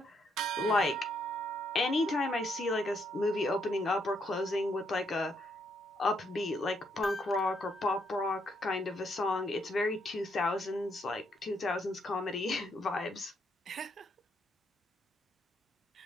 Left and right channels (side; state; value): both; normal; correlation 0.74